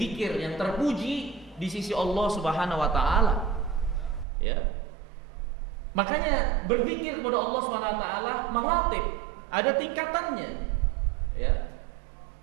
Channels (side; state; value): left; drops out; at 4.2 s